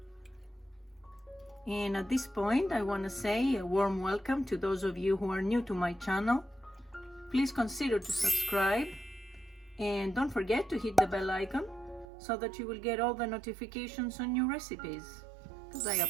And at this point I want to say a warm welcome to those of you who are new to my channel. Please consider to subscribe and don't forget to hit the bell icon so that you will get all the notifications on new recipes, because I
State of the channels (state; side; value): drops out; left; at 12.1 s